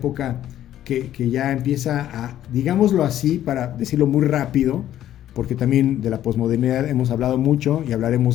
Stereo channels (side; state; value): right; quieter; 12.1 dB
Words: que ya empieza a, digámoslo así, para decirlo muy rápido, porque también de la posmodernidad hemos hablado mucho y